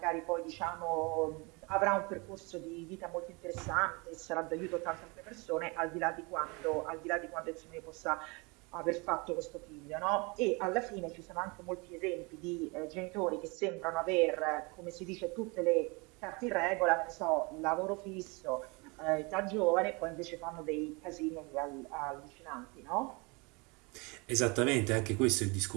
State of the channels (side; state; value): left; quieter; 28.5 dB